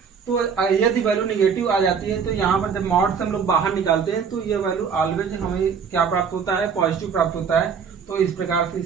तो यदि वैल्यू निगेटिव आ जाती है तो यहाँ पर जब मॉड से हम लोग बाहर निकालते हैं तो ये वैल्यू ऑलवेज हमें क्या प्राप्त होता है, पॉजिटिव प्राप्त होता है। तो इस प्रकार से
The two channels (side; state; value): left; quieter; 6.4 dB